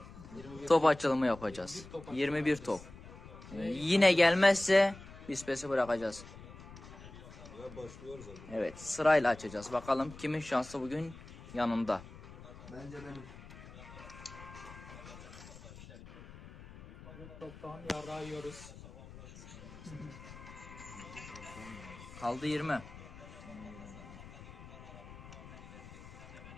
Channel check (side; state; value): left; noise; rumble, 16 dB below the sound